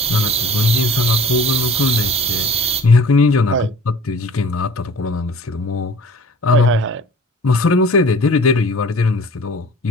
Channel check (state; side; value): normal; both; correlation 0.45